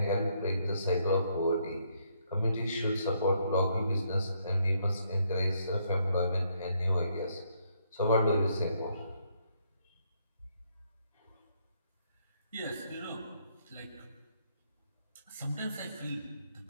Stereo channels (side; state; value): both; inverted; correlation -0.72